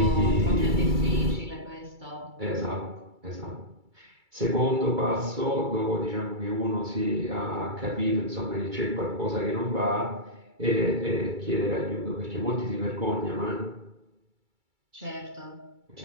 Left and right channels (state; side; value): late; left; 2.3 ms